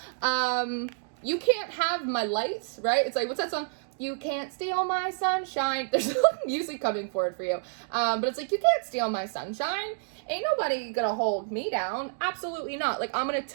You can't have my lights, right? It's like, what's that song? You can't steal my sunshine. There's music coming forward for you. But it's like, you can't steal my sunshine. Ain't nobody gonna hold me down. Absolutely not. Like, I'm gonna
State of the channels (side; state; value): left; silent; digital silence